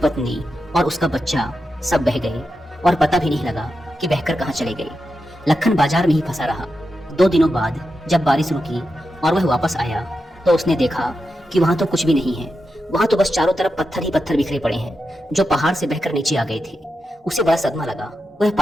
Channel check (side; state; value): both; normal; correlation 0.88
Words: और उसका बच्चा सब बह गए और पता भी नहीं लगा कि बहकर कहाँ चले गए। लखन बाजार में ही फंसा रहा। 2 दिनों बाद जब बारिश रुकी और वह वापस आया तो उसने देखा कि वहां तो कुछ भी नहीं है। वहां तो बस चारों तरफ पत्थर ही पत्थर बिखरे पड़े हैं जो पहाड़ से बहकर नीचे आ गए थे। उसे बड़ा सदमा लगा। वह